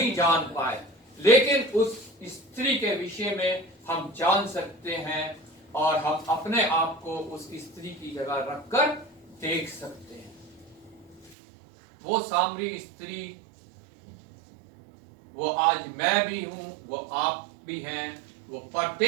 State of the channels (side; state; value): left; drops out; at 11.4 s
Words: जान पाए, लेकिन उस स्त्री के विषय में हम जान सकते हैं और हम अपने आप को उस स्त्री की जगह रखकर देख सकते हैं। वो सामरी स्त्री, वो आज मैं भी हूं, वो आप भी हैं, वो